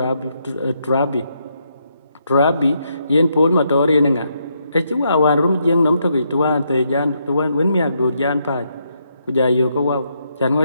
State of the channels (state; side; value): inverted; both; correlation -0.77